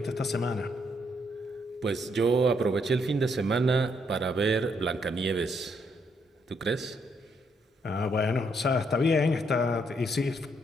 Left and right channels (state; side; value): normal; both; correlation 0.74